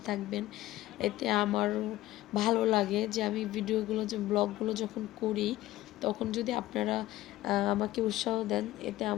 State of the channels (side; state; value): right; quieter; 16.0 dB